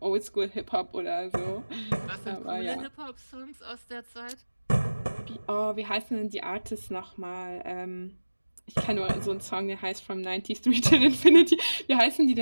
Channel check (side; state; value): both; inverted; correlation -1.00